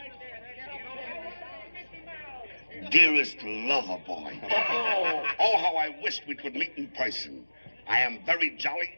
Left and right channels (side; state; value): both; inverted; correlation -1.00